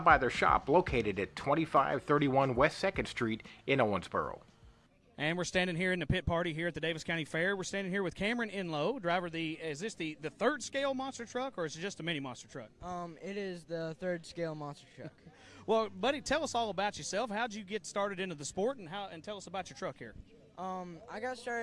by their shop located at 2531 West 2nd Street in Owensboro. And we're standing here in the pit party here at the Daviess County Fair. We're standing here with Cameron Enlow, driver of is this the third scale monster truck, or is it just a mini monster truck? It is the third scale monster truck. Well, buddy, tell us all about yourself. How'd you get started into the sport, and tell us about your truck here? I got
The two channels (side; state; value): both; identical; correlation 1.00